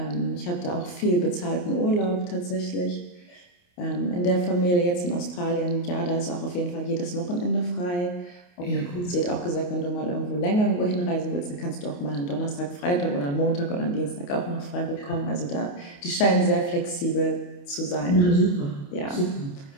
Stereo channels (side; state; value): right; late; 28 ms